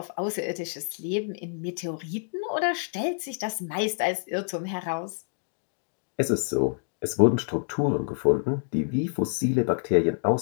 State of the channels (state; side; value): silent; right; 60 dB below the other